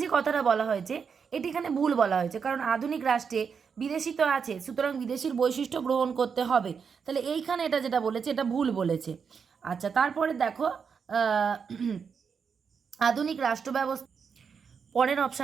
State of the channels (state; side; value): quieter; left; 6.2 dB